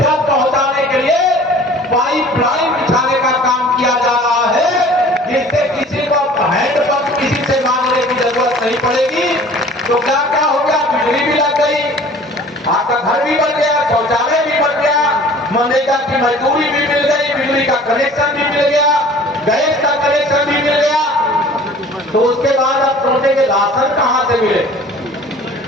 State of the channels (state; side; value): normal; both; correlation 0.47